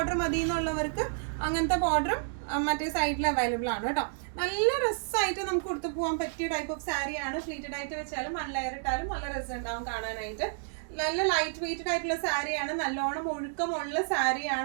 മതി എന്നുള്ളവർക്ക് അങ്ങനത്തെ ബോർഡറും മറ്റേ സൈഡിൽ അവൈലബിൾ ആണ് കേട്ടോ. നല്ല രസമായിട്ട് നമുക്ക് കൊടുത്തു പോകാൻ പറ്റിയ ടൈപ്പ് ഓഫ് സാരിയാണ്. ഫ്ലീറ്റഡ് ആയിട്ട് വെച്ചാലും വൺ ലെയർ ഇട്ടാലും നല്ല രസം ഉണ്ടാവും കാണാനായിട്ട്. നല്ല ലൈറ്റ് വെയ്റ്റഡ് ആയിട്ടുള്ള സാരിയാണ്. നല്ലോണം ഒഴുക്കമുള്ള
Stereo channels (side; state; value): left; silent; digital silence